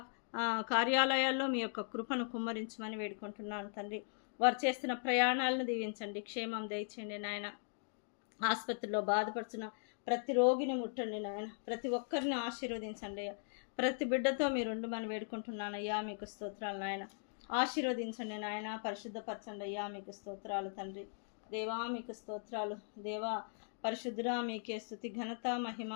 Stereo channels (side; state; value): right; silent; digital silence